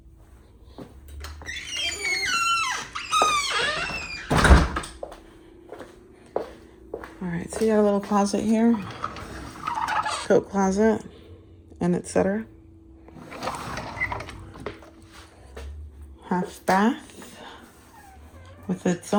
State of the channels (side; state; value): both; identical; correlation 1.00